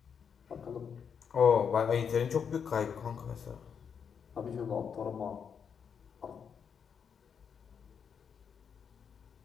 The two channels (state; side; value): quieter; right; 7.0 dB